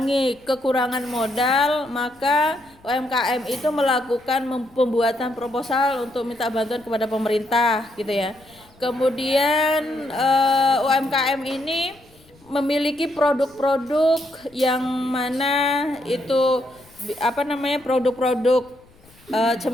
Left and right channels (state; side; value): noise; left; rumble, 28 dB below the sound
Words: kekurangan modal maka UMKM itu melakukan pembuatan proposal untuk minta bantuan kepada pemerintah gitu ya. Kemudian UMKM ini memiliki produk-produk yang mana itu produk-produk